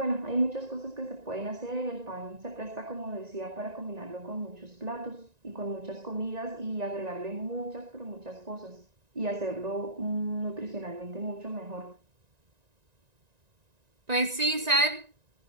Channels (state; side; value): late; left; 1.9 ms